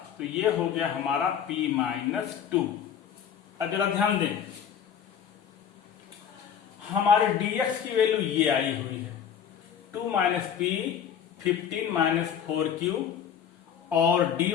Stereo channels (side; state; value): right; quieter; 8.3 dB